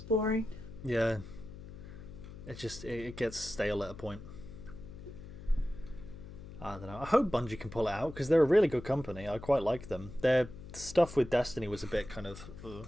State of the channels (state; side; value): noise; left; hum, 14 dB below the sound